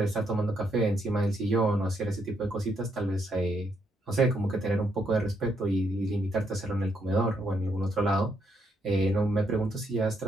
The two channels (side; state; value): both; normal; correlation 0.76